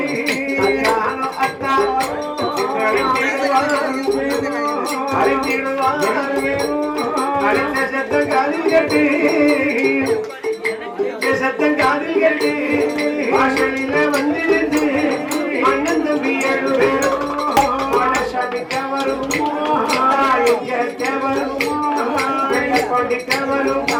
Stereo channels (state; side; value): identical; both; correlation 1.00